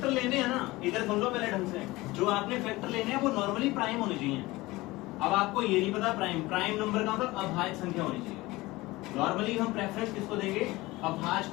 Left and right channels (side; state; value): right; quieter; 20.2 dB